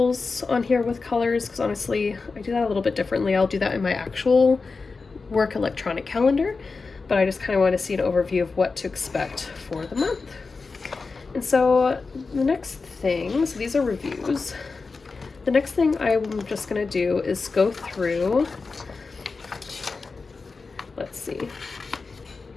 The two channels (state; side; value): quieter; right; 4.3 dB